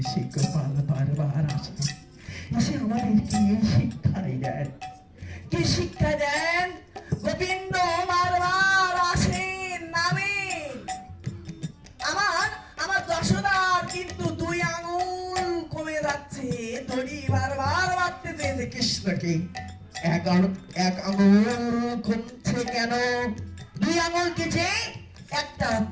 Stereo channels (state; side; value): identical; both; correlation 1.00